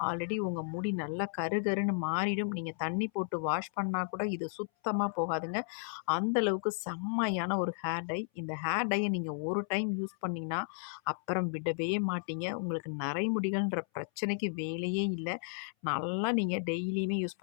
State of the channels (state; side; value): silent; right; 55 dB below the other